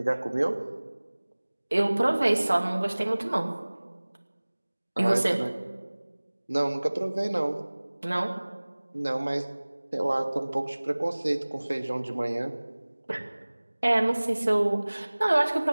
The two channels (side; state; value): both; inverted; correlation -1.00